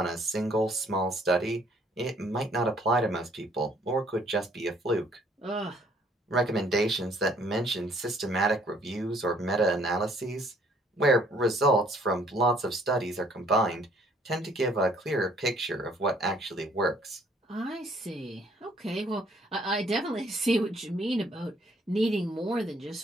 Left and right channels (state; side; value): normal; both; correlation 0.62